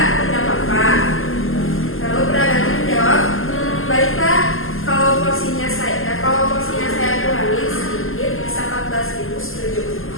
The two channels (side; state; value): right; late; 0.60 ms